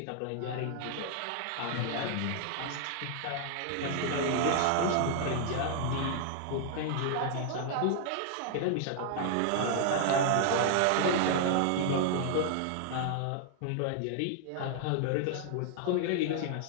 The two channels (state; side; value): different; both; correlation 0.00